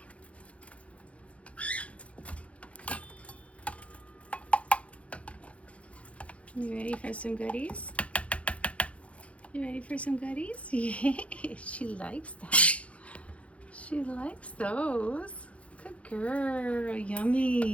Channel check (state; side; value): late; right; 0.063 ms